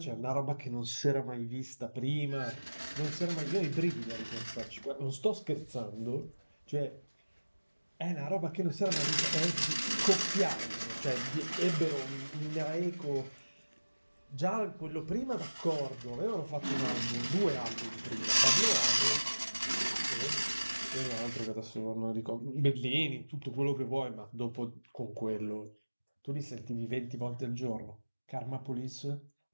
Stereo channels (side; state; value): both; inverted; correlation -1.00